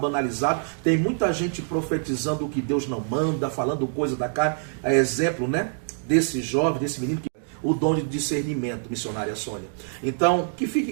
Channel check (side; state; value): left; silent; digital silence